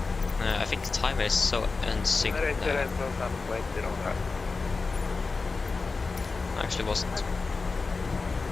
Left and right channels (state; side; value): quieter; right; 4.1 dB